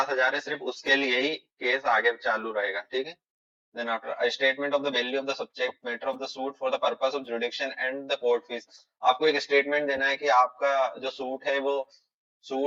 है सिर्फ उसके लिए ही केस आगे चालू रहेगा। ठीक है, then after a statement of the value of the subject matter of the suit for the purpose of jurisdiction and the court fees। आपको एक स्टेटमेंट देना है कि आपका जो सूट है वो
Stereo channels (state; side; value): identical; both; correlation 1.00